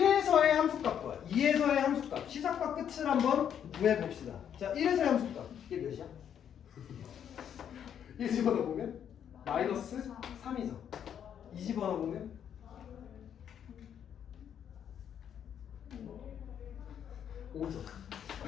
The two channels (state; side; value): quieter; right; 8.9 dB